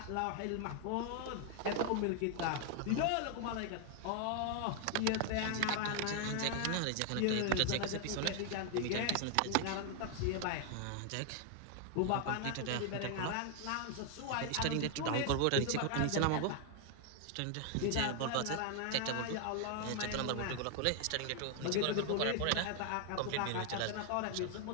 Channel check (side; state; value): both; different; correlation 0.00